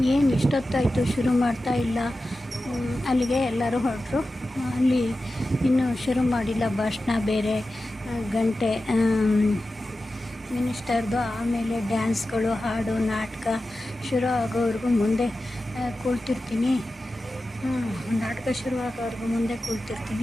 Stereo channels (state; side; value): normal; both; correlation 0.93